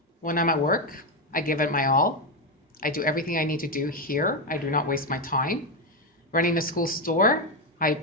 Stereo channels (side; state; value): both; normal; correlation 0.08